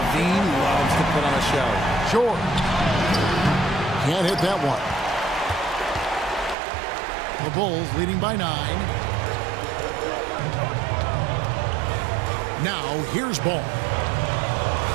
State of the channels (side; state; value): left; drops out; at 6.6 s